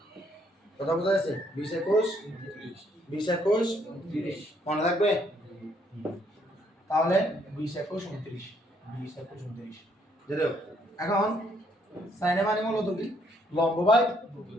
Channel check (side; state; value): both; normal; correlation 0.69